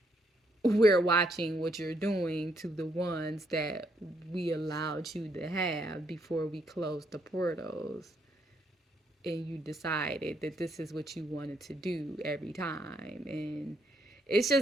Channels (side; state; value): both; normal; correlation 0.73